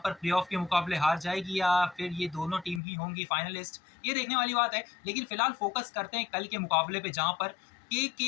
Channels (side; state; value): right; drops out; at 2.8 s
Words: प्लेऑफ के मुकाबले हार जाएगी, या फिर ये दोनों टीम ही होंगी फाइनलिस्ट, ये देखने वाली बात है। लेकिन फिलहाल फोकस करते हैं कल के मुकाबले पे, जहां पर